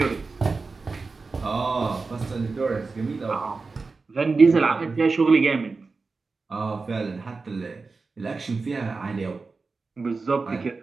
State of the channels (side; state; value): left; quieter; 4.2 dB